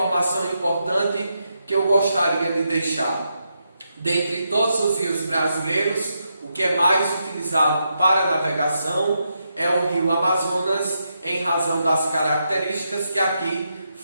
importante que eu gostaria de deixar? Dentre todos os rios brasileiros, o que é mais utilizado para navegação é o rio Amazonas, em razão das características que aqui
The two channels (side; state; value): both; inverted; correlation -0.83